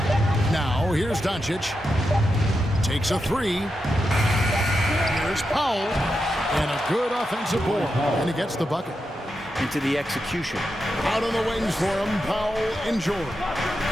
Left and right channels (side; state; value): both; normal; correlation 0.87